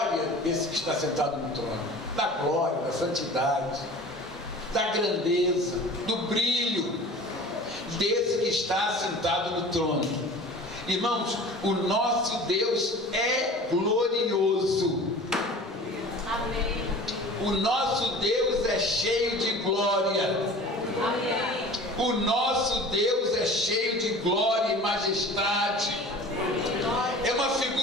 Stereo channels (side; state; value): both; normal; correlation 0.41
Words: desse que está sentado no trono, da glória, da santidade, da grandeza, do brilho desse que está sentado no trono. Irmãos, o nosso Deus é glorioso. Amém. O nosso Deus é cheio de glória. Amém. O nosso Deus é cheio de glória e majestade. É uma